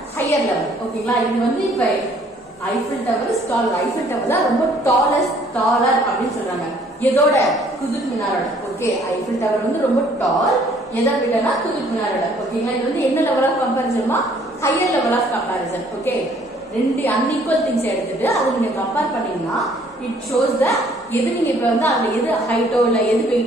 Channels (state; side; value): normal; both; correlation 0.60